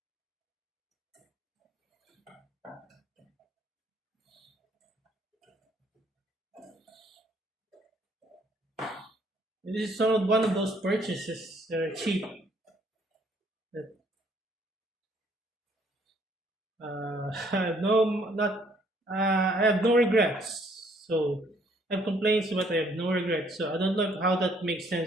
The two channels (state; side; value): normal; both; correlation 0.64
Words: This is one of those purchases that are cheap. That I have no not I have no regrets. So I have complaints, but I have no regrets. So I don't know how that makes